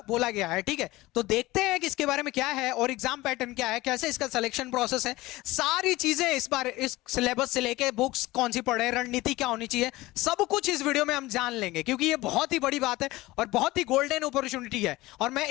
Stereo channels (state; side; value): quieter; right; 19.2 dB